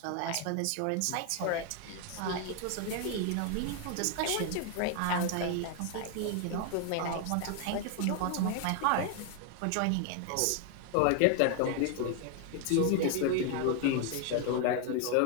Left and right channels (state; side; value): different; both; correlation 0.01